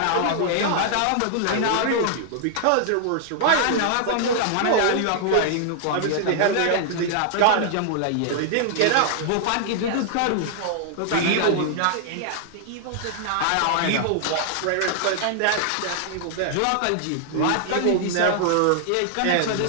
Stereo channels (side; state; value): both; different; correlation -0.01